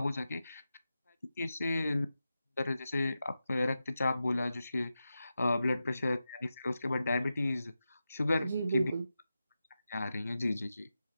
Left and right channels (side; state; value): both; inverted; correlation -0.91